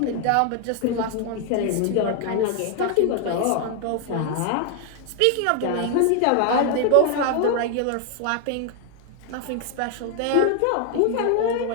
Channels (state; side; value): different; both; correlation 0.01